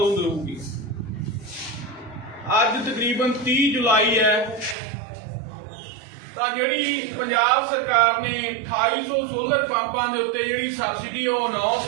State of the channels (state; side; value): drops out; left; at 4.8 s